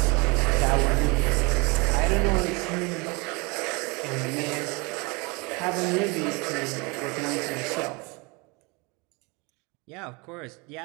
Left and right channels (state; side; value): quieter; left; 28.2 dB